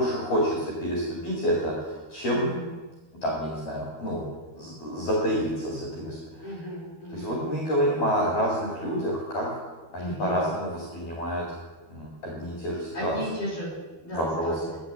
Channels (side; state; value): right; late; 12 ms